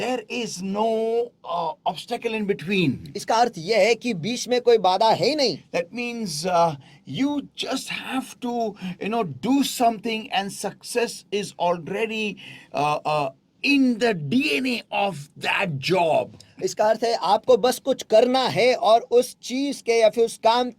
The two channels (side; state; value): both; identical; correlation 1.00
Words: is no obstacle in between. इसका अर्थ ये है कि बीच में कोई बाधा है ही नहीं। That means you just have to do something, and success is already in the DNA of that job. इसका अर्थ है आपको बस कुछ करना है और उस चीज के या फिर उस काम